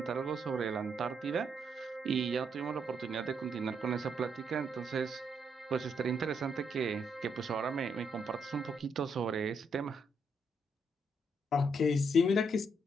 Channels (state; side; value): normal; both; correlation 0.76